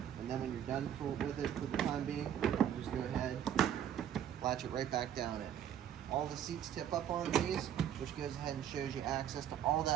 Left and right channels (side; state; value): left; quieter; 9.9 dB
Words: and then when you're done with it for the time being, you just go ahead, latch it right back down in. All the seats tip up on these, which goes ahead and shows you access to all